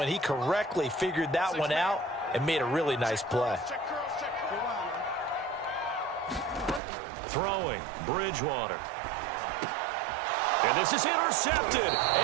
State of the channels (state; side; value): drops out; left; at 6.8 s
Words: He correctly figured that one out and made a really nice play. Throwing, Bridgewater. And this is intercepted,